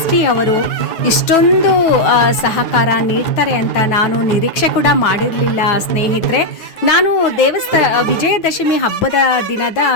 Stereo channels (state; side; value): late; right; 9.3 ms